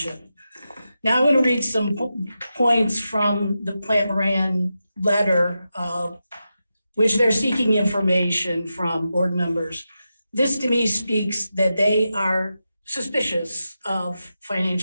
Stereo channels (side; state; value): both; inverted; correlation -0.90